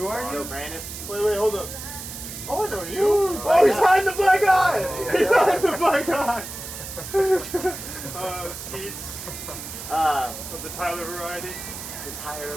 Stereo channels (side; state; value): right; noise; hiss, 10 dB below the sound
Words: are Let's you? go, Brandon. Wait, hold up. Oh, I know you. Oh, He's hiding the black eye. He's hiding the black eye. Skeets of the Tyler variety. The Tyler